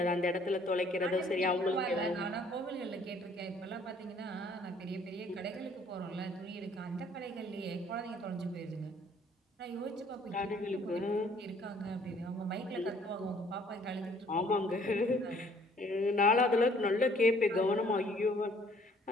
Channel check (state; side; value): normal; both; correlation 0.59